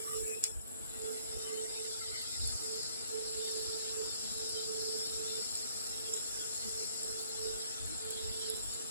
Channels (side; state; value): both; inverted; correlation -0.62